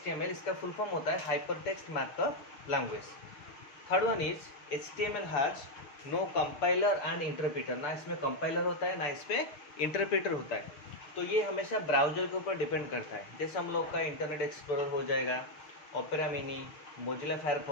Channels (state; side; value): late; right; 6.5 ms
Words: इसका फुल फॉर्म होता है hyper text markup language. Third one is HTML has no compiler and interpreter. ना इसमें कंपाइलर होता है ना इस पर इंटरप्रीटर होता है। तो ये हमेशा ब्राउजर के ऊपर डिपेंड करता है। जैसे हम लोग का इंटरनेट एक्सप्लोरर हो जाएगा, opera mini, Mozilla